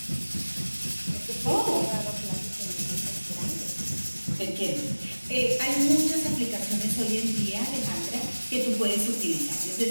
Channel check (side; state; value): both; inverted; correlation -1.00